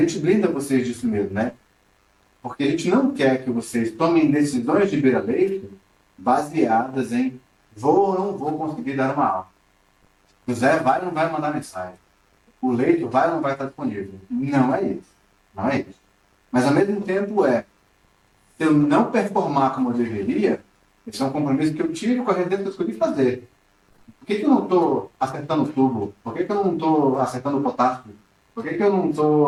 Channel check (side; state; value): both; identical; correlation 1.00